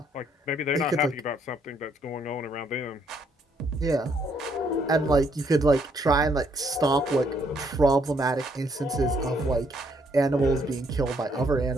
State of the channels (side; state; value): both; normal; correlation 0.70